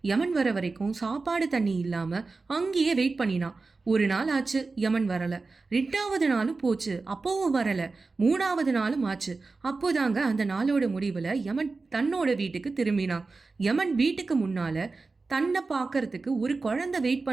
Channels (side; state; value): left; quieter; 3.9 dB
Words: யமன் வர வரைக்கும் சாப்பாடு தண்ணி இல்லாம அங்கேயே வெயிட் பண்ணினான். ஒரு நாள் ஆச்சு, யமன் வரல. 2வது நாளும் போச்சு, அப்பவும் வரல. 3வது நாளும் ஆச்சு. அப்போதாங்க அந்த நாளோட முடிவுல யமன் தன்னோட வீட்டுக்கு திரும்பினான். யமன் வீட்டுக்கு முன்னால தன்னை பார்க்கறதுக்கு ஒரு குழந்தை வெயிட்